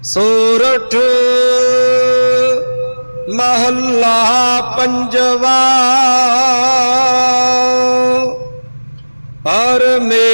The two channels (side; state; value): both; inverted; correlation -1.00